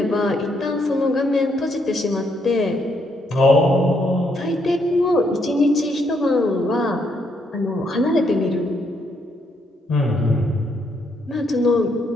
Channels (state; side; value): normal; both; correlation 0.75